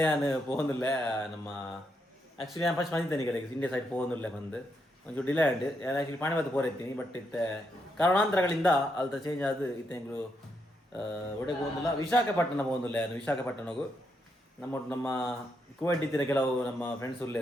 ನಾನು പോകുന്നില്ല ನಮ್ಮ ಆ್ಯಕ್ಚುಲಿ ഞാൻ ಫಸ್ಟ್ ಬಂದಿದ್ದೇನೆ ಈ ಕಡೆಗೆ ಇಂಡಿಯಾ ಸೈಡ್ പോകുന്നിಲ್ಲ ಬಂದು ಒಂಚೂರು ಡಿಲೇ ಆಂಡ್ ನಾನು ಆ್ಯಕ್ಚುಲಿ ಪಾಣಿಬಾತ್ ಪೋರೆತ್ತೀನಿ ಬಟ್ ಇತ್ತೆ ಕಾರಣಾಂತರಗಳಿಂದ ಅಲ್ತ ಚೇಂಜ್ ಆದು ಇತ್ತೆಂಗಳು ಒಡೆಗೆ ಹೋಗಿಲ್ಲ ವಿಶಾಖಪಟ್ಟಣ ಹೋಗಿಲ್ಲ ನಾನು ವಿಶಾಖಪಟ್ಟಣಗೂ ನಮ್ಮ ಕುವೈಟ್ ಇತ್ತಿನ ಕೆಲವು ನಮ್ಮ ಫ್ರೆಂಡ್ಸ್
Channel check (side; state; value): both; normal; correlation 0.80